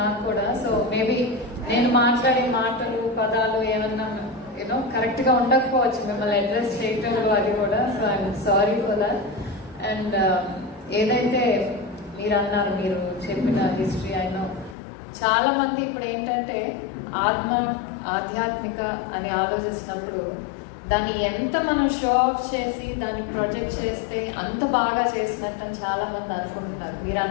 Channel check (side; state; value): right; drops out; at 14.8 s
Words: నాకు కూడా. సో మేబీ నేను మాట్లాడే మాటలు పదాలు ఏమన్నా కరెక్ట్ గా ఉండకపోవచ్చు, మిమ్మల్ని అడ్రస్ చేయటంలో అది కూడా. So I'm sorry for that. And ఏదైతే మీరు అన్నారు, మీరు చెప్పిన హిస్టరీ అయినా చాలా మంది ఇప్పుడు ఏంటంటే ఆధ్యాత్మిక అని ఆలోచిస్తున్నప్పుడు దాన్ని ఎంత మనం షో ఆఫ్ చేసి దాన్ని ప్రొజెక్ట్ చేస్తే అంత బాగా చేసినట్టు చాలా మంది అనుకుంటున్నారు. మీరు